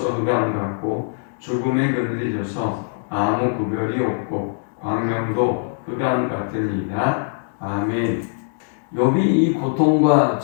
흑암 같고 죽음의 그늘이 져서 아무 구별이 없고 광명도 흑암 같으니이다. 아멘. 욥이 이 고통과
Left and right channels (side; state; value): right; silent; digital silence